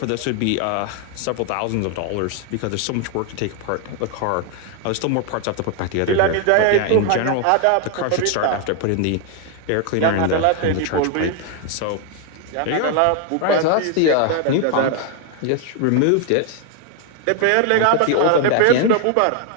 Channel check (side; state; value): both; different; correlation 0.00